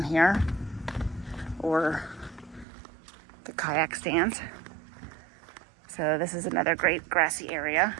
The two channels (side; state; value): left; drops out; at 2.7 s